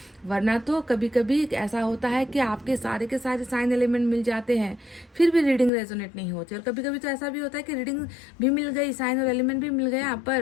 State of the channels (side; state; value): right; drops out; at 5.7 s